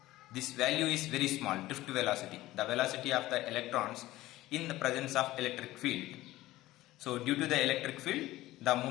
This value is very small, drift velocity, the velocity of the electrons in the presence of electric field. So due to the electric field, the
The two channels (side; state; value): right; quieter; 16.7 dB